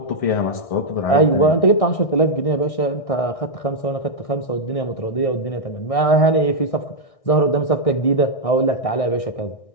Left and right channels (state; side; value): late; right; 1.6 ms